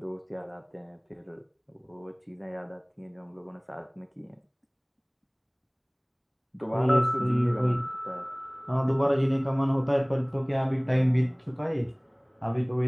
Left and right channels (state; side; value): identical; both; correlation 1.00